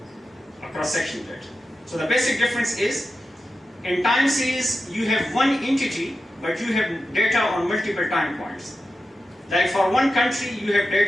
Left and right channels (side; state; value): both; normal; correlation 0.91